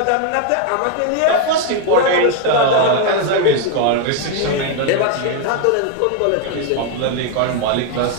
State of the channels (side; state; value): both; different; correlation 0.01